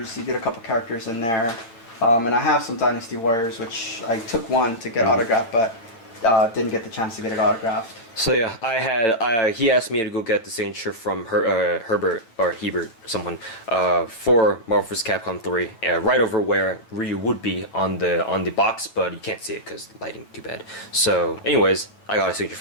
He did a couple characters in there. And I have some Dynasty Warriors, which I took one to get autographed, but didn't get the chance to get it autographed. So yeah, I had he asked me to go get the signature from Herbert or Hebert, someone, for Marvel vs. Capcom 3, right over where Ryu would be on the box, but you can't see it because lighting too bad. So, anyways, I got a signature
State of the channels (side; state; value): right; late; 8.8 ms